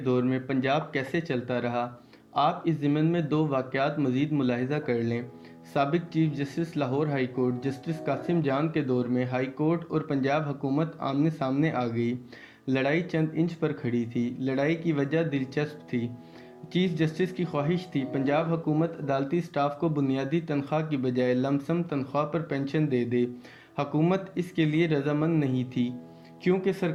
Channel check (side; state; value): both; identical; correlation 1.00